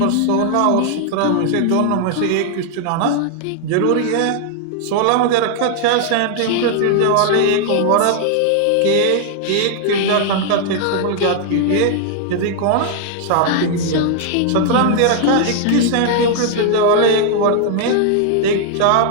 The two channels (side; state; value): both; different; correlation 0.00